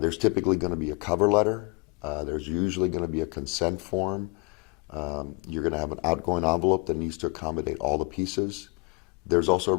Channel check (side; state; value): right; quieter; 30.5 dB